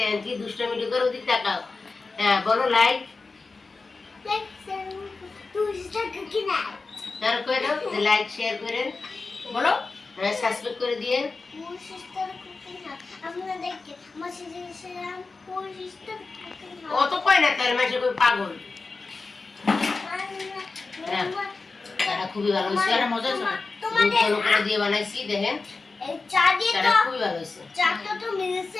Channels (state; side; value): quieter; right; 4.0 dB